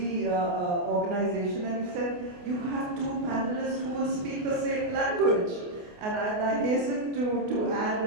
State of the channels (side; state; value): left; late; 28 ms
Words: organization, and said, you have 2 panelists who will speak the same language. And I hasten to add